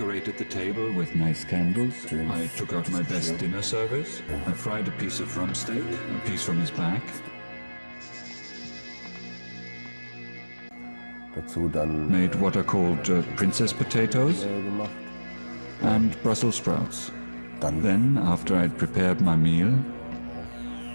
the table with nice candles. I took out my best dinner service. I fried a piece of rump steak, a piece from his back. Made what are called princess potatoes and Brussels sprouts. Then, after I'd prepared my meal,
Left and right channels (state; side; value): inverted; both; correlation -1.00